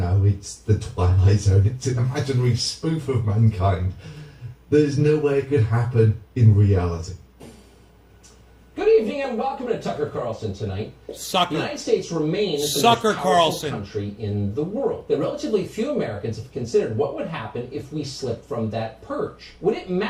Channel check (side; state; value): both; identical; correlation 1.00